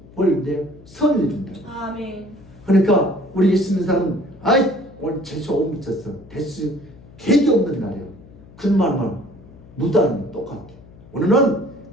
보이는데 선을 준다. 아멘. 그러니까 우리 예수 믿는 사람은 아이 오늘 재수 못 미쳤어. 대수 되게 없는 날이에요. 그 말만 무단은 똑같아. 오늘은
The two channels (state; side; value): noise; left; hum, 22 dB below the sound